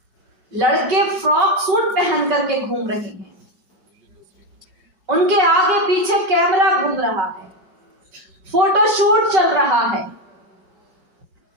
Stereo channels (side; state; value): left; late; 5.3 ms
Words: लड़के फ्रॉक सूट पहन करके घूम रहे हैं, उनके आगे पीछे कैमरा घूम रहा है, फोटोशूट चल रहा है।